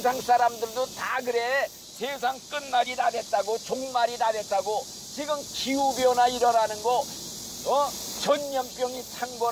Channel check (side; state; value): both; identical; correlation 1.00